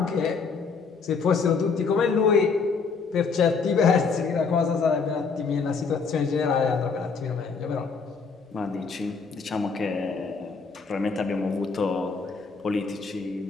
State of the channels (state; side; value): quieter; right; 5.0 dB